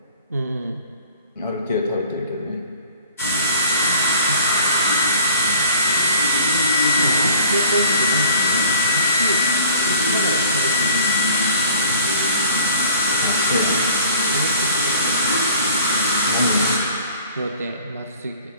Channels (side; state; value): both; inverted; correlation -0.49